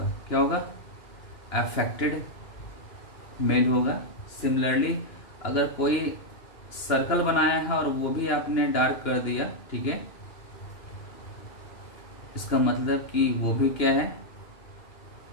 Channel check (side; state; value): right; late; 2.9 ms